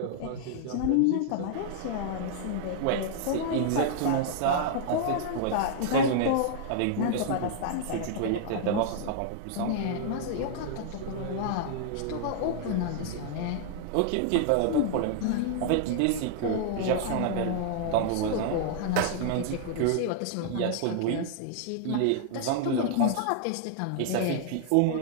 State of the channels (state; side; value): different; both; correlation -0.01